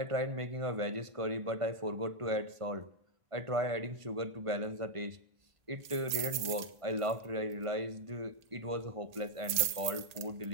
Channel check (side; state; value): left; late; 1.8 ms